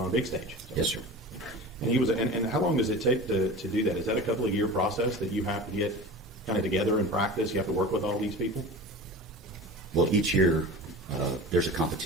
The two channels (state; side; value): normal; both; correlation 0.34